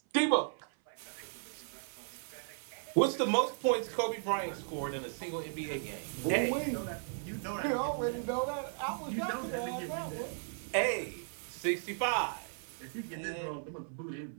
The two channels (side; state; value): left; silent; 54 dB below the other